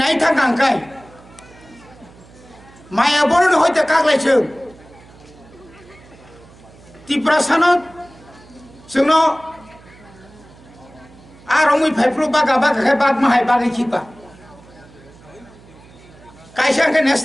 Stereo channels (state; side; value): noise; right; hum, 24 dB below the sound